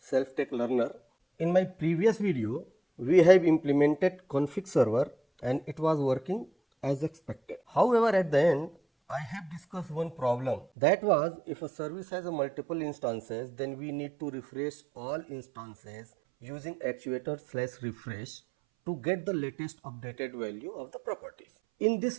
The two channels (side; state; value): left; drops out; at 10.7 s